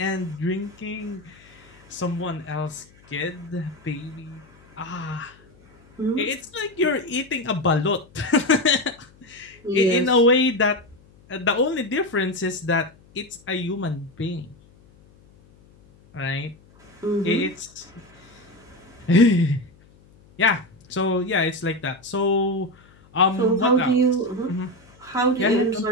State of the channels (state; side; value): noise; left; hum, 27 dB below the sound